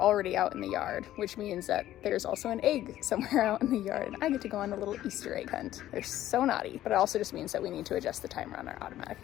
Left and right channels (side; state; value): right; quieter; 13.4 dB